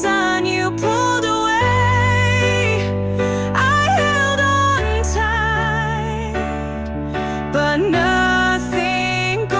You pulled away, but nothing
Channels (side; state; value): both; identical; correlation 1.00